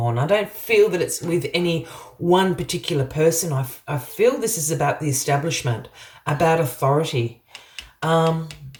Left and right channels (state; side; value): identical; both; correlation 1.00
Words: I don't feel that it's with any one particular person. I feel this is about the establishment, about authority.